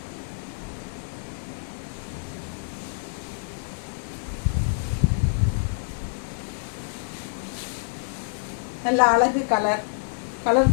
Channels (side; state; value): right; silent; 60 dB below the other